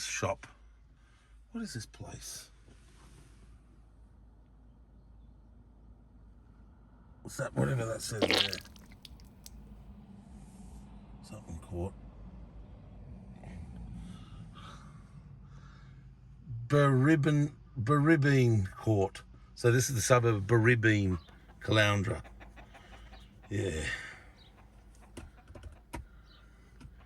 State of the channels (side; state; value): both; identical; correlation 1.00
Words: What is this place? What's that? Whatever that says there. Something caught. Baribine Court. So this is the suburb of Baribine, Caloundra. Yeah.